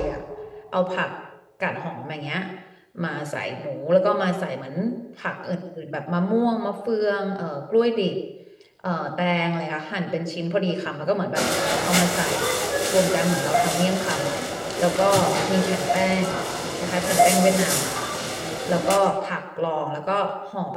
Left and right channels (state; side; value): identical; both; correlation 1.00